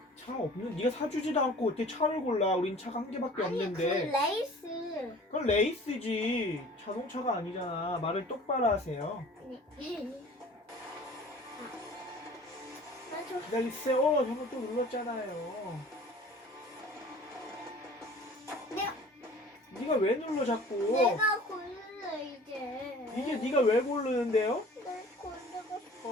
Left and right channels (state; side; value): normal; both; correlation 0.46